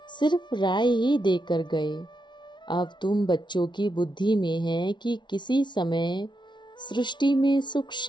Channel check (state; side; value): late; right; 0.23 ms